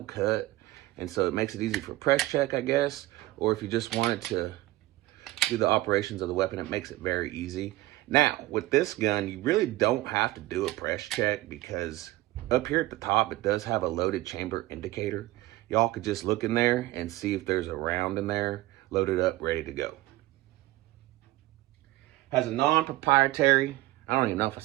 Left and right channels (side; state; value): left; quieter; 17.5 dB